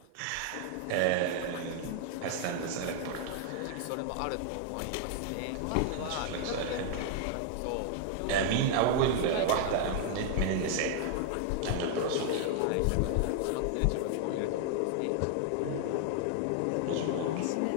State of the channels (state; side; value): different; both; correlation 0.00